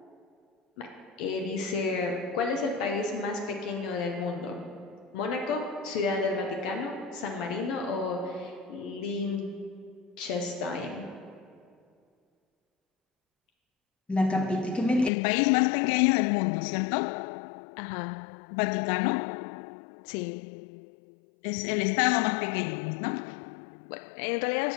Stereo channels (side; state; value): right; drops out; at 15.1 s